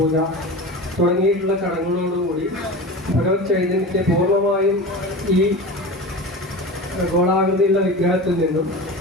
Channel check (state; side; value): normal; both; correlation 0.30